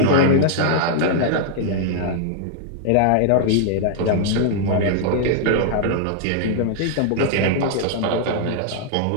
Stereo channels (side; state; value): both; different; correlation -0.01